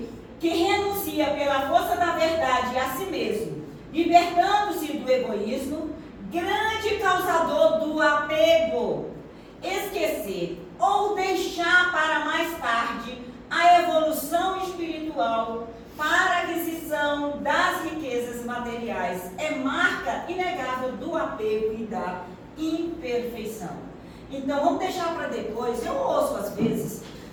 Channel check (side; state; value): both; identical; correlation 1.00